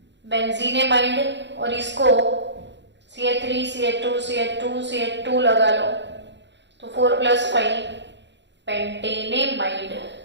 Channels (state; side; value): late; left; 0.52 ms